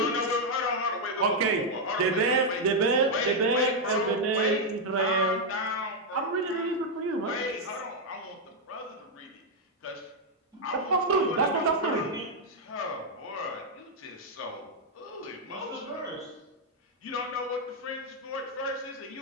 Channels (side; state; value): both; normal; correlation -0.01